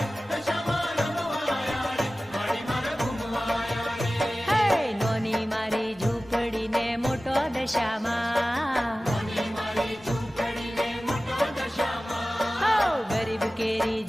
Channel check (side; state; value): both; normal; correlation 0.96